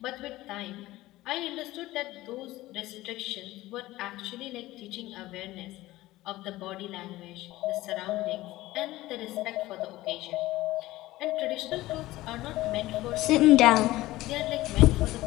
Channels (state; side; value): quieter; right; 17.4 dB